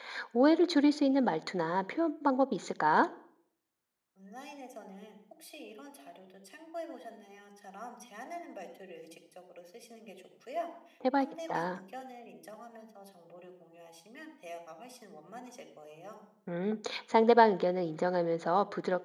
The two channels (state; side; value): identical; both; correlation 1.00